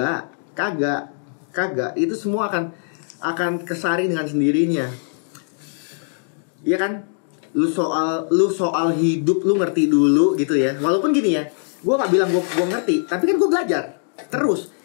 itu semua akan kesaring dengan sendirinya. Iya kan? Lu soal hidup lu ngerti dulu gitu ya. Walaupun gini ya, gue nggak bilang gue ngerti, tapi kan gue belajar terus.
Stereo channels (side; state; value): right; silent; 65 dB below the other